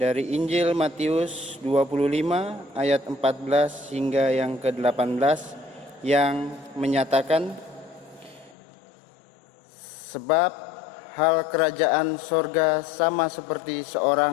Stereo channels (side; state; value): right; drops out; at 8.6 s